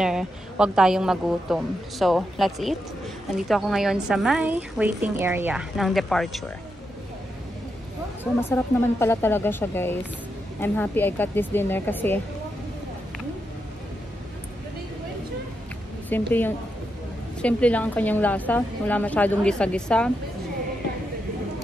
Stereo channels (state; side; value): normal; both; correlation 0.84